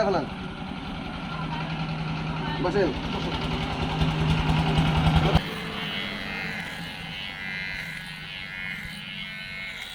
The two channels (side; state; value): both; identical; correlation 1.00